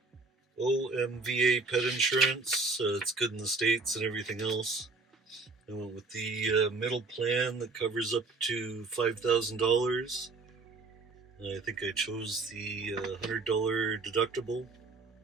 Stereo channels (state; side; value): quieter; left; 3.8 dB